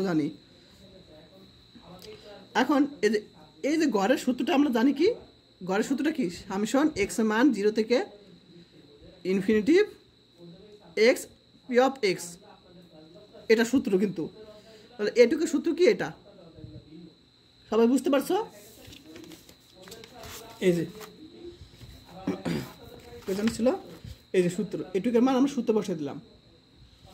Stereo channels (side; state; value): both; identical; correlation 1.00